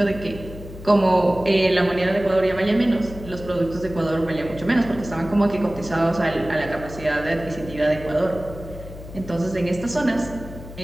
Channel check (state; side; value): noise; left; hum, 14 dB below the sound